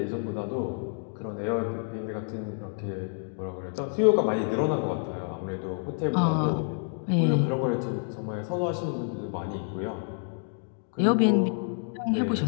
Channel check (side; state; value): right; silent; 56 dB below the other